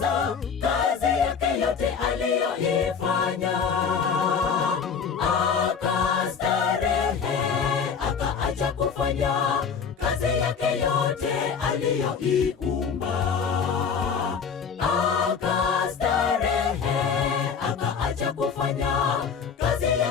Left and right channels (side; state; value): right; quieter; 6.3 dB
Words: kazi yake yote aliyoifanya. Akastarehe, akaacha kufanya kazi yake yote aliyoiumba. Akastarehe, akaacha kufanya kazi